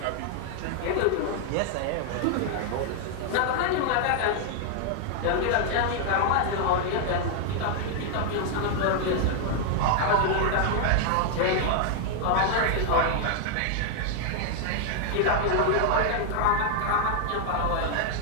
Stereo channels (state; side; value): different; both; correlation 0.00